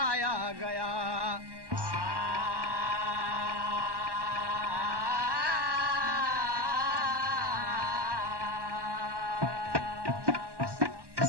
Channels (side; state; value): left; late; 1.1 ms